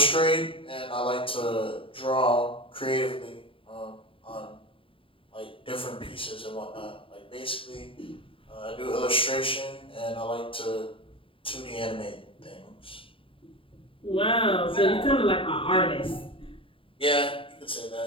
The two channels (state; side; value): late; right; 0.26 ms